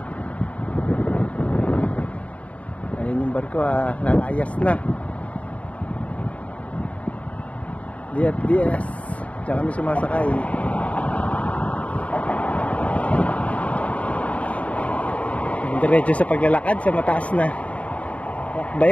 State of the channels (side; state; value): right; late; 0.066 ms